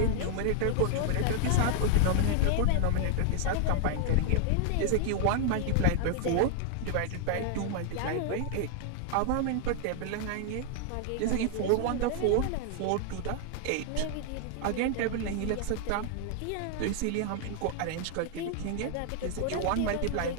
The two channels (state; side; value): different; both; correlation 0.00